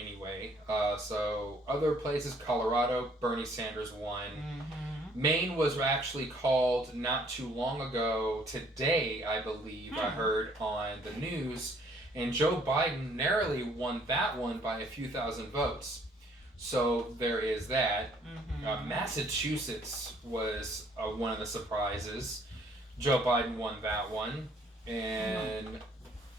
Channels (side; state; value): both; normal; correlation 0.62